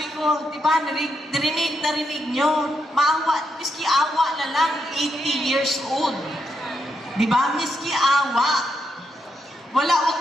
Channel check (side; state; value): both; normal; correlation 0.81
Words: ko, di ba, narinig nyo, maawa, miski awa na lang, 80 years old. Di ba, miski awa. Wag